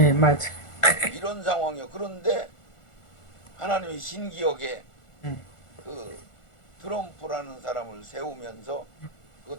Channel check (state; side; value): late; right; 1.4 ms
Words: 맞아. 이런 상황이요. 그런데 하나님이 신기하게 그 트럼프라는 사람을 세우면서